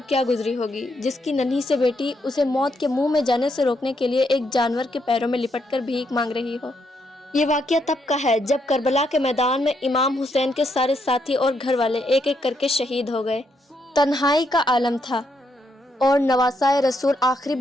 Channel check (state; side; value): normal; both; correlation 0.77